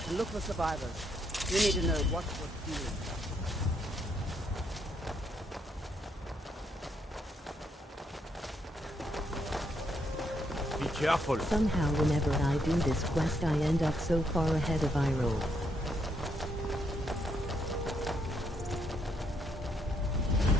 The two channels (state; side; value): normal; both; correlation 0.75